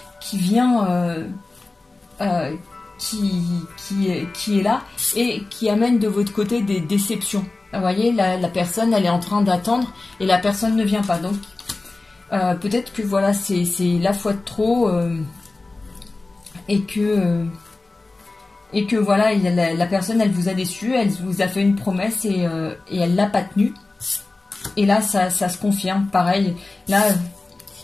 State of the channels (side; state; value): right; quieter; 3.3 dB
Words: qui vient... qui est là et qui amène de votre côté des déceptions. Vous voyez, la personne, elle est en train d'attendre et la personne ne vient pas. Donc, peut-être que voilà, c'est la fois de trop et que voilà, la personne, elle vous a déçu, elle vous a fait une promesse et elle l'a pas tenue. Et là, ça se confirme. Pareil, là...